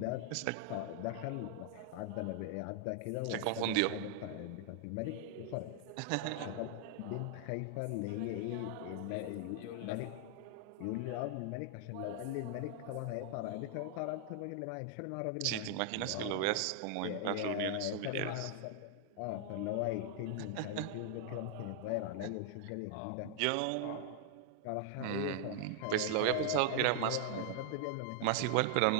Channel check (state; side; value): different; both; correlation -0.01